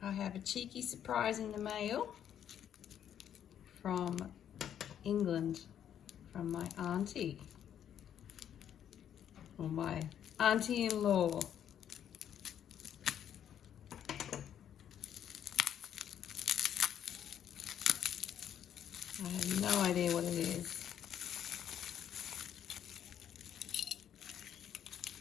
I have a cheeky surprise in the mail from England, from my auntie, or my auntie-in-law. I have no idea what it is.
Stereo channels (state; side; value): quieter; right; 9.7 dB